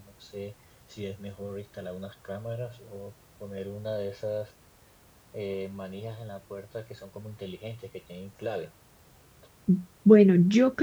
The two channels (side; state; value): both; identical; correlation 1.00